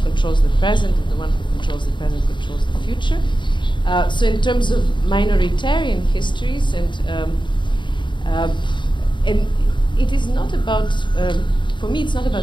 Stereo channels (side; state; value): right; late; 0.23 ms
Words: controls the present, and the one who controls the present controls the future. So in terms of minoritarian histories, and it is not about, for me, it's not about